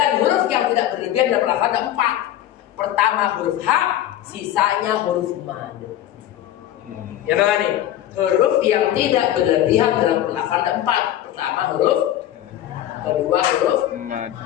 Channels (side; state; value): right; quieter; 12.3 dB